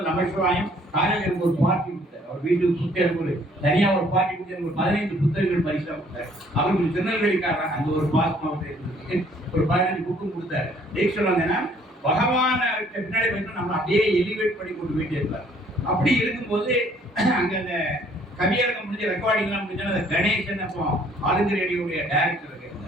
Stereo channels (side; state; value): both; normal; correlation 0.60